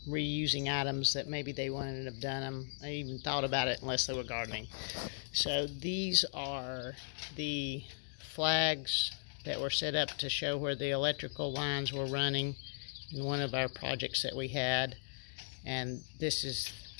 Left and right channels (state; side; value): silent; right; digital silence